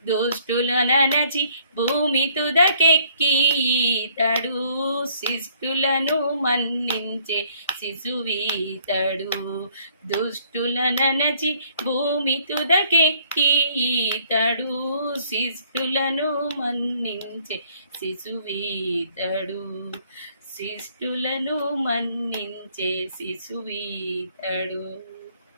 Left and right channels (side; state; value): both; inverted; correlation -0.63